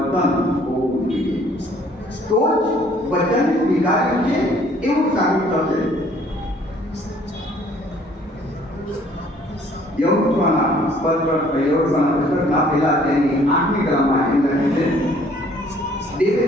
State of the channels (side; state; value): both; normal; correlation 0.59